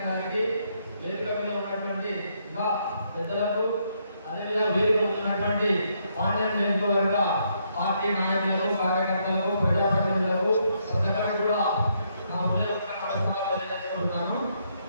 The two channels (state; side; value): inverted; both; correlation -0.75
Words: గారికి, వేదిక మీద ఉన్నటువంటి ఇంకా పెద్దలకు, అదేవిధంగా వీరు ఉన్నటువంటి పాండ్యం నియోజకవర్గ పార్టీ నాయకులకు, కార్యకర్తలకు, ప్రజాప్రతినిధులకు ప్రజలకు కూడా నా హృదయపూర్వక తెలియజేసుకుంటున్నాను.